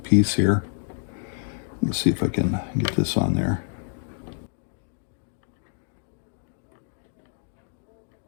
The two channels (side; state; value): right; silent; digital silence